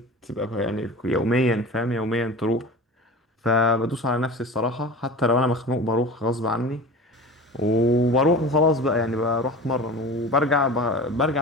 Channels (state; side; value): normal; both; correlation 0.35